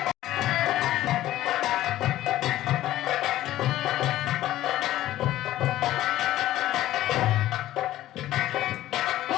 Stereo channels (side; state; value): right; quieter; 14.4 dB